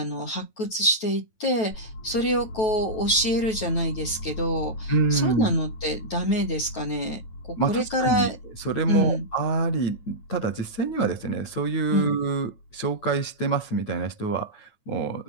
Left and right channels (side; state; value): right; late; 9.3 ms